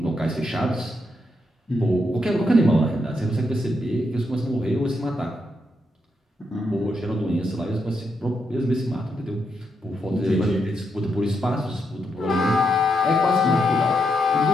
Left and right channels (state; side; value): normal; both; correlation 0.81